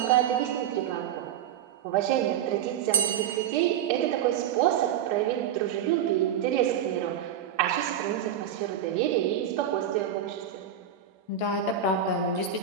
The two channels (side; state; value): left; quieter; 9.1 dB